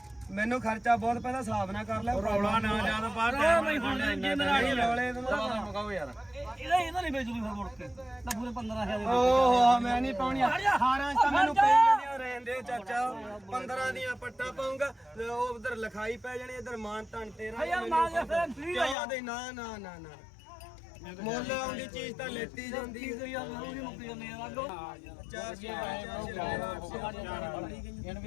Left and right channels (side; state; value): right; drops out; at 18.9 s